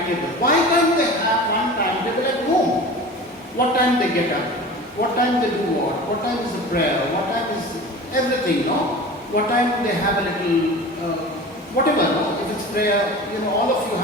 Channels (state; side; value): normal; both; correlation 0.36